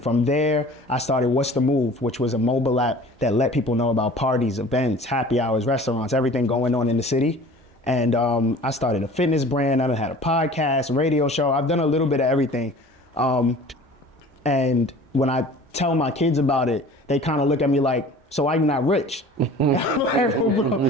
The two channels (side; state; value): both; normal; correlation 0.45